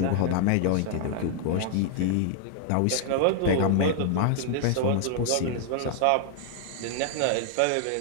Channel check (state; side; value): different; both; correlation 0.00